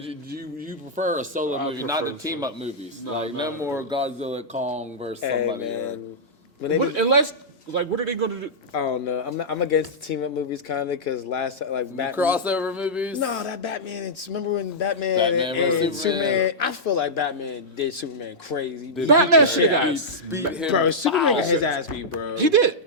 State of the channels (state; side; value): normal; both; correlation -0.11